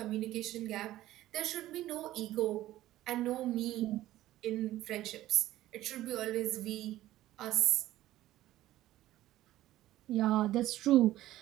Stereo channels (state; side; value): quieter; left; 14.9 dB